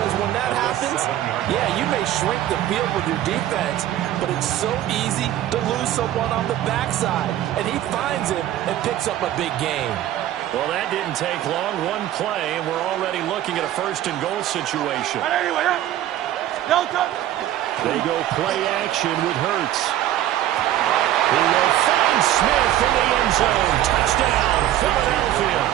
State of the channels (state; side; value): quieter; left; 12.8 dB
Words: when that happens, yeah, you may shrink the field with your defense, but it's so easy to lose someone on the backside. And he finds him and picks up a big gain. Well, that didn't take long. One play, and we're already looking at a first-and-goal situation. They go play action with Hurts. He will find Smith in the end zone. Touchdown, Philadelphia.